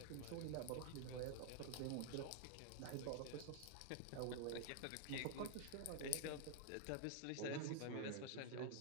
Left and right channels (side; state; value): both; different; correlation 0.00